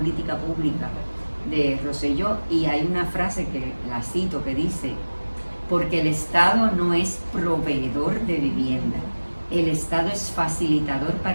pública de Rosselló y hay una frase que la cito que dice: porque el Estado no es proveedor de vivienda, el Estado es facilitador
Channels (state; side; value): inverted; both; correlation -1.00